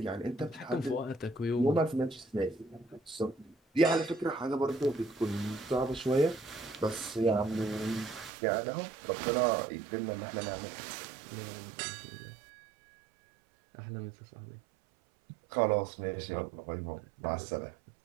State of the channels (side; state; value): left; drops out; at 8.3 s